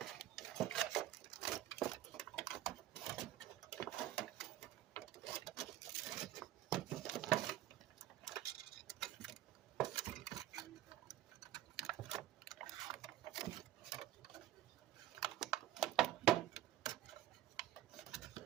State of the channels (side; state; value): left; quieter; 13.3 dB